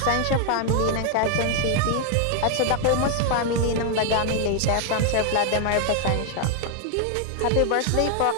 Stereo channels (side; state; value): both; different; correlation 0.00